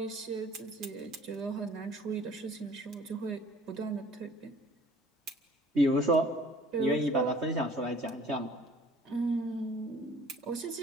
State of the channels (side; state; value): both; normal; correlation 0.53